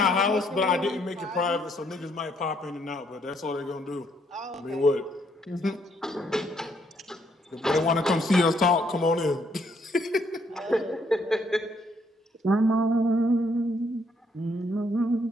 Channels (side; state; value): both; normal; correlation 0.70